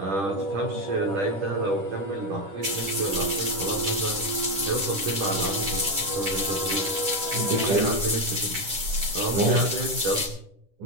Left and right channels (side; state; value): left; late; 10 ms